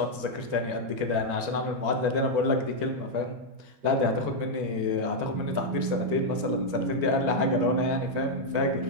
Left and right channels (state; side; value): late; left; 12 ms